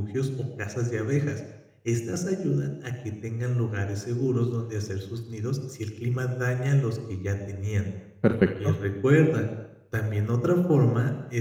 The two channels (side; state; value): both; identical; correlation 1.00